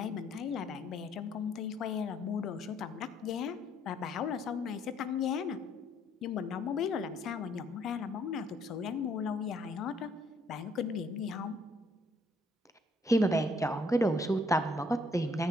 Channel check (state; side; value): normal; both; correlation 0.66